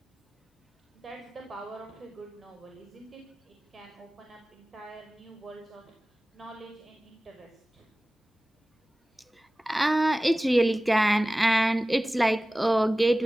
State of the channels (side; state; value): both; normal; correlation 0.97